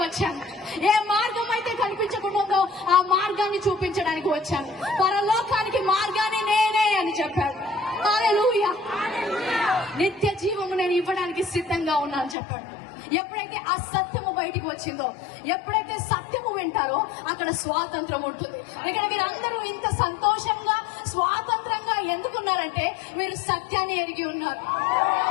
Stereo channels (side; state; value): right; drops out; at 12.4 s